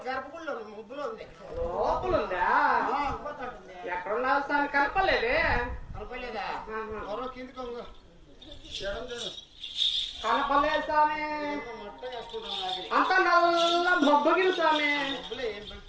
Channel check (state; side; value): identical; both; correlation 1.00